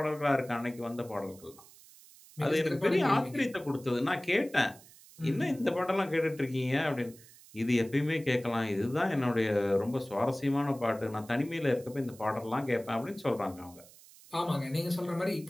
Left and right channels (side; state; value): right; noise; hiss, 22 dB below the sound